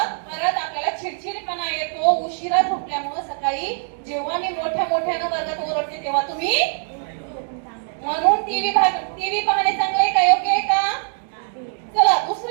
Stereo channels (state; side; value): silent; left; 64 dB below the other